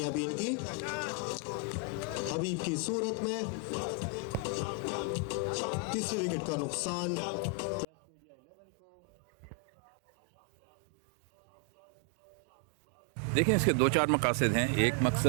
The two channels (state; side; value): drops out; left; at 7.9 s